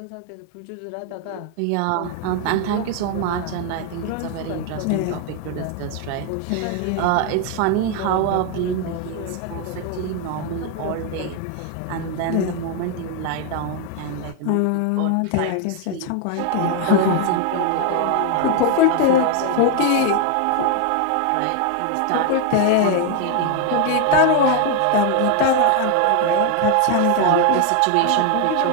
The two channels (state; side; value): different; both; correlation 0.01